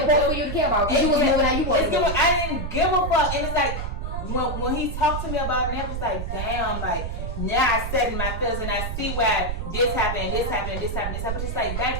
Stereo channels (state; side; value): noise; right; rumble, 4 dB below the sound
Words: for you to care about. You was moving how you wanted. I didn't give a fuck, and it's like when he talked to me about it, I was like, damn, like now I said in my feelings and I see why this happened, this happened, this happened, this happened. Just like